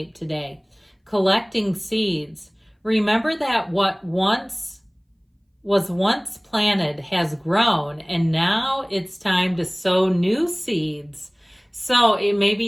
today. Collecting seeds. Remember that what was once planted has grown, and now it's time to sow new seeds. So it may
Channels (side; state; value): both; identical; correlation 1.00